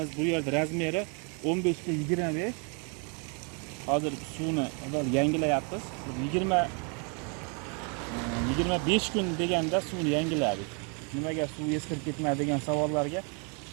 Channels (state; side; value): quieter; left; 36.6 dB